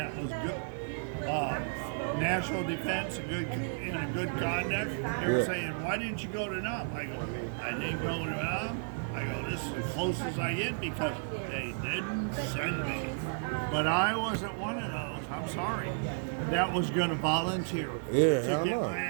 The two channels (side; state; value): left; silent; digital silence